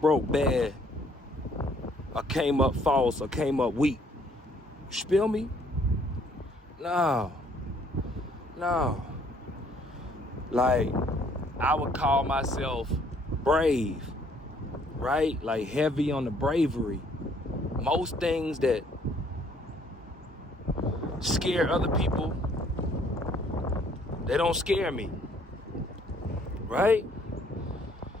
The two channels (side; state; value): both; normal; correlation 0.63